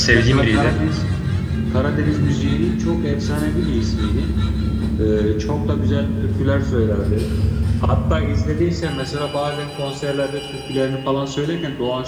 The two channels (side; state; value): both; identical; correlation 1.00